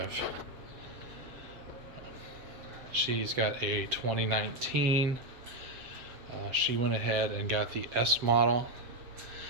She's got a 2019. She went ahead and got the S model.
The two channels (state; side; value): late; left; 7.7 ms